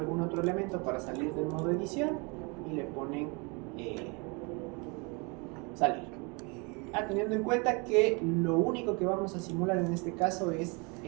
otro elemento para salir del modo edición y le ponen salir. Teniendo en cuenta que lo único que vamos a simular en este caso es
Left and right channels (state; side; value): quieter; left; 30.6 dB